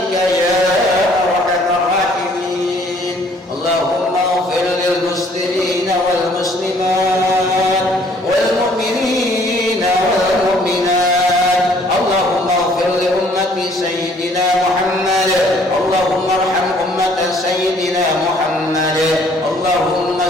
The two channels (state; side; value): normal; both; correlation 0.60